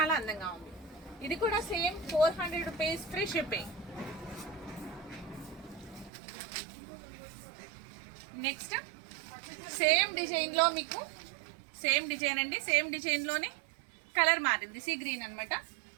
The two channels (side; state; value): left; drops out; at 6.1 s